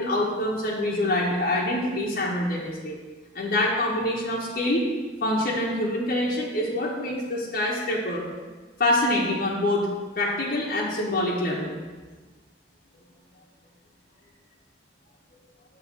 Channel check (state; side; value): normal; both; correlation 0.19